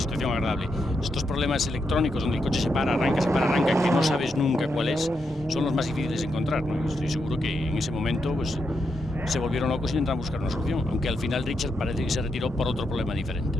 agradable. Estos problemas electrónicos donde el coche se para, arranca, que no sabes nunca cuál es, son los más difíciles de encontrar, ¿no? Estoy seguro que en ese momento pues, se volvieron locos y intentaron buscar una solución, aunque al final Richard parece que se retiró por otro problema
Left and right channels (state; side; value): normal; both; correlation 0.82